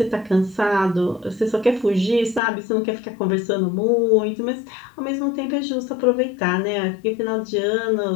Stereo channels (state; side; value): drops out; right; at 2.4 s